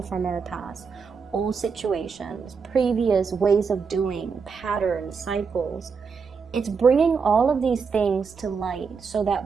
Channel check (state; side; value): quieter; left; 5.6 dB